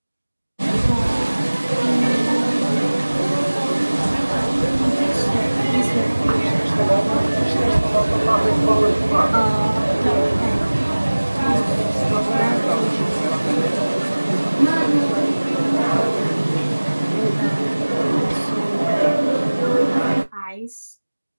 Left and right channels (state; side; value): inverted; both; correlation -1.00